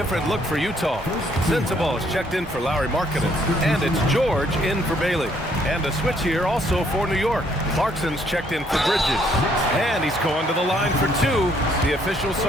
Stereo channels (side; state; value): both; normal; correlation 0.67